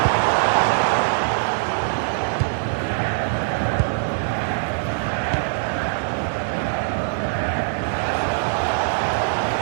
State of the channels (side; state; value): left; silent; 64 dB below the other